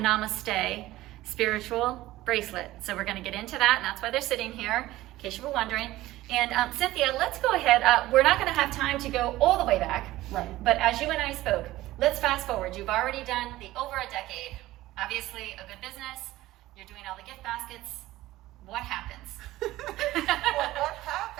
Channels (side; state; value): left; quieter; 16.6 dB